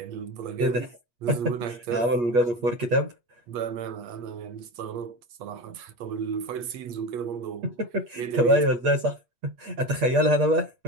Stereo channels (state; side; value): late; left; 8.4 ms